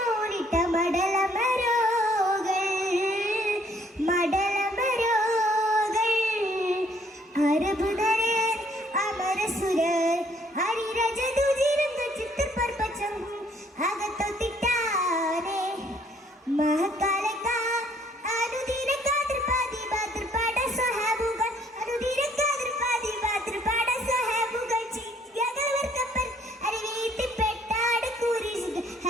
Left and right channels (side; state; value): both; normal; correlation 0.63